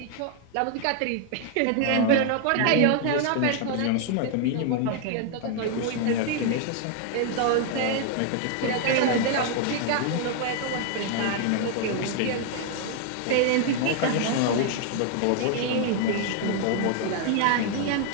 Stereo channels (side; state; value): both; different; correlation 0.00